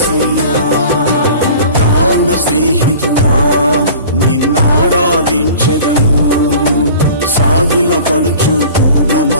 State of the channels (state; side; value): inverted; both; correlation -0.44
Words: ప్రాణ స్నేహితుడా నిన్నారాధించెదను, సాగిల పడుచు పూర్ణ